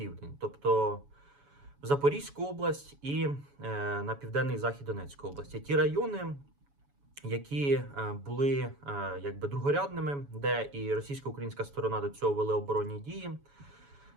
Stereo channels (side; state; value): left; late; 7.1 ms